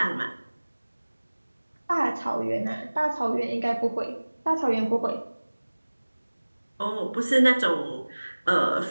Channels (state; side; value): inverted; both; correlation -1.00